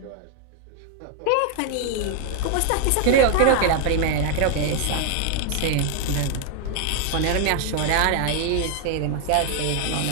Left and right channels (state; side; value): different; both; correlation 0.00